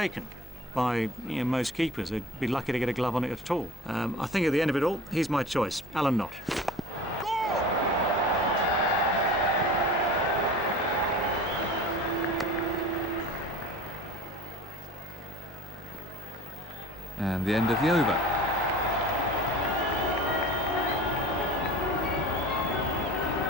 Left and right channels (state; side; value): normal; both; correlation 0.39